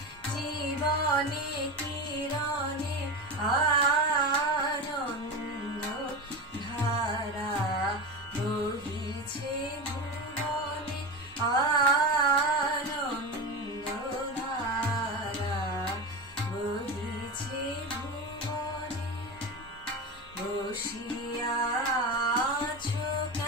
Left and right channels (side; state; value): both; normal; correlation 0.23